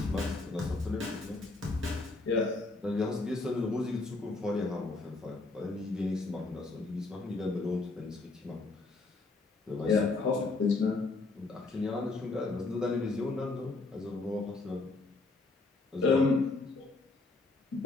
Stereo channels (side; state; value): right; quieter; 3.4 dB